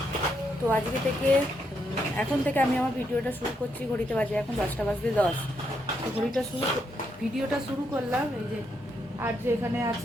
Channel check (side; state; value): both; normal; correlation 0.78